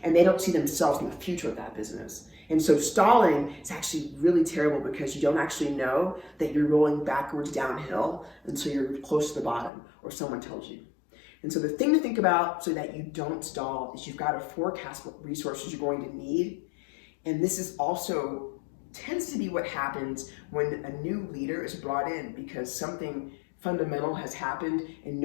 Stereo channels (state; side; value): drops out; right; at 9.7 s